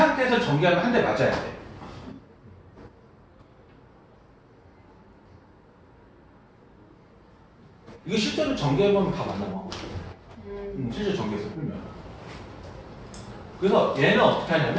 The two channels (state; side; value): identical; both; correlation 1.00